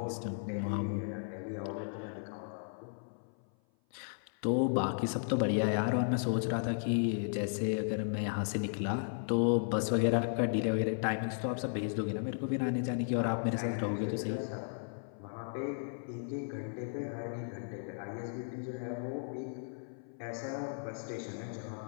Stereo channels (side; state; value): right; silent; 54 dB below the other